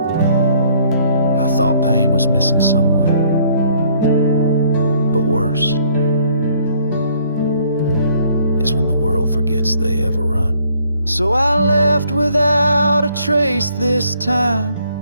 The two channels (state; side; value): inverted; both; correlation -0.63